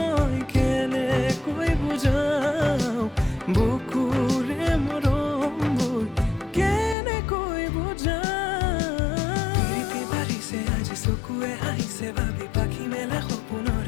কেনেকৈ বুজাও বুকুৰে মৰমবোৰ কেনেকৈ বুজাও প্ৰীতি বাঢ়িছে আজি চকুৱে আহিছে ভাবি পাখি মেলা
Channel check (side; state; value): right; drops out; at 7.0 s